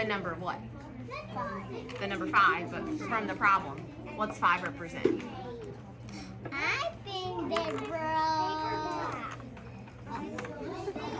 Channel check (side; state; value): both; identical; correlation 1.00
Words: number of what? 5. The number 5, but from the problem. What's 5 represent? I think they broke.